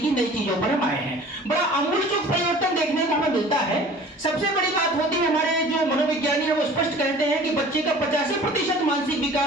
नई चीजों पर हम आए हैं। बड़ा आमूलचूल परिवर्तन देखने को हमें मिलता है। सबसे बड़ी बात होती है, हमारे जो मनोविज्ञानी है वो स्पष्ट कहते हैं कि बच्चे का 85% मानसिक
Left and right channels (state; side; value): normal; both; correlation 0.45